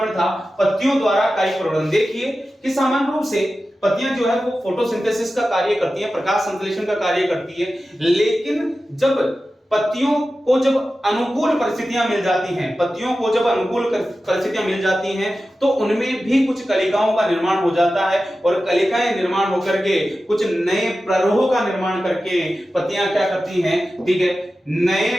था, पत्तियों द्वारा कायिक प्रवर्धन। देखिए कि सामान्य रूप से पत्तियां जो है वो फोटोसिंथेसिस का कार्य करती है, प्रकाश संश्लेषण का कार्य करती है, लेकिन जब पत्तियों को जब अनुकूल परिस्थितियां मिल जाती हैं, पत्तियों को जब अनुकूल परिस्थितियां मिल जाती हैं तो उनमें भी कुछ कलिकाओं का निर्माण हो जाता है, और कलिकाएं निर्माण होकर के कुछ नए प्ररोह का निर्माण करके पत्तियां क्या करती हैं, ठीक है, नए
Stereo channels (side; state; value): both; normal; correlation 0.94